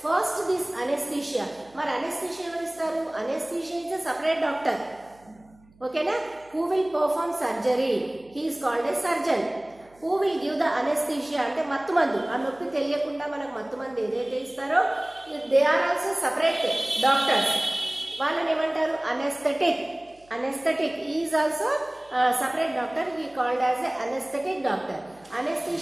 First this anesthesia. మరి అనెస్థీషియా ఎవరు ఇస్తారు? Anesthesia is a separate doctor. ఓకేనా? Who will perform surgery, he is called a surgeon. Who will give the anesthesia అంటే మత్తు మందు. ఆ నొప్పి తెలియకుండా మనకు మత్తు మందు ఏదైతే ఇస్తారో they are also separate doctors. వాళ్ళని ఏమంటారు? Anaesthetic. Anaesthetic is also separate doctor. He called as a anesthetic doctor.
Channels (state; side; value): noise; right; hum, 29 dB below the sound